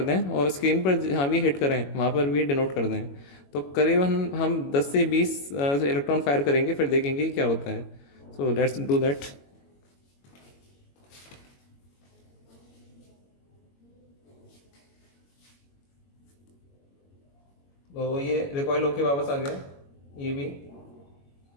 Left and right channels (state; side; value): late; right; 21 ms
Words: दें, और स्क्रीन पर जहाँ भी हिट करें वहाँ पर भी डिनोट कर दें। तो करीबन हम 10 से 20 इलेक्ट्रॉन फायर करेंगे, फिर देखेंगे क्या होता है। So let's do that. तो ये रिकॉइल होके वापस आ गया, ये भी।